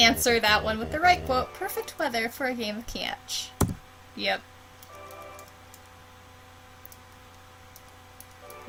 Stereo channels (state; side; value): identical; both; correlation 1.00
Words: that one with the right quote. Perfect weather for a game of catch. Yep.